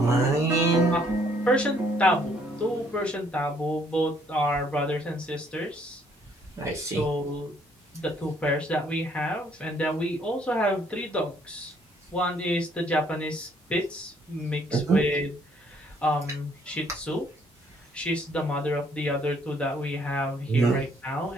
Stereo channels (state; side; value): normal; both; correlation 0.65